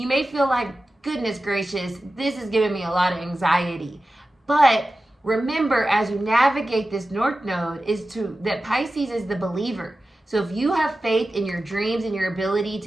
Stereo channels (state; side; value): normal; both; correlation 0.94